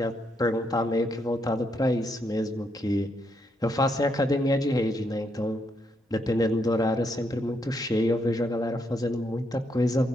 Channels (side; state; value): both; normal; correlation 0.77